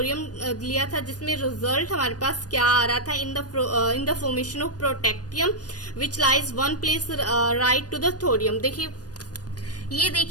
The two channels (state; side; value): late; right; 0.68 ms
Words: लिया था, जिसमें रिजल्ट हमारे पास क्या आ रहा था, in the formation of protactinium which lies 1 place right to the thorium. देखिए ये